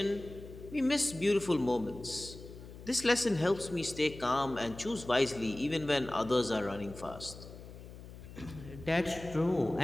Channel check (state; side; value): noise; left; hum, 15 dB below the sound